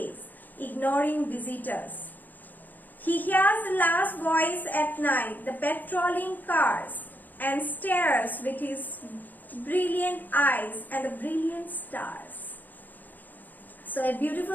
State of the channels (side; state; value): right; late; 0.085 ms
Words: ignoring visitors. He hears the last voice at night, the patrolling cars, and stares with his brilliant eyes and the brilliant stars. So a